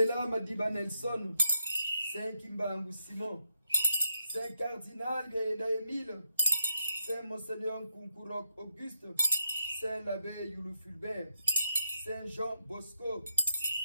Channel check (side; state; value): both; inverted; correlation -0.81